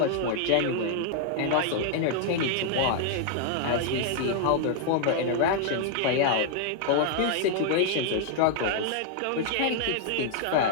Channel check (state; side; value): different; both; correlation 0.00